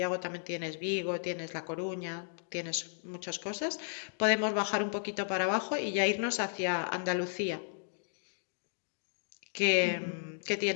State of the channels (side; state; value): right; silent; digital silence